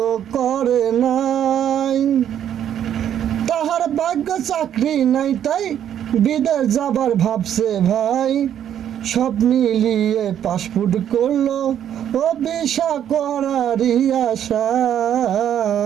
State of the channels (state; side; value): quieter; left; 9.9 dB